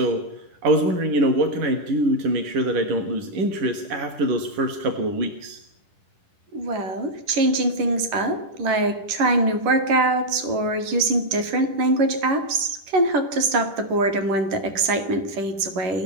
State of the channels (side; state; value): left; late; 10 ms